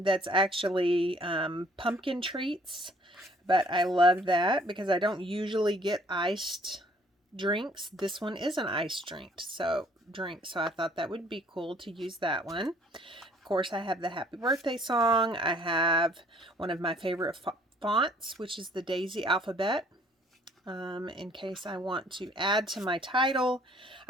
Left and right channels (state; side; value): normal; both; correlation 0.59